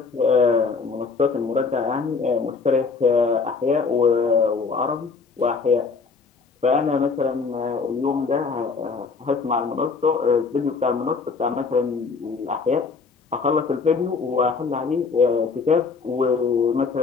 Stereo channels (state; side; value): quieter; right; 4.8 dB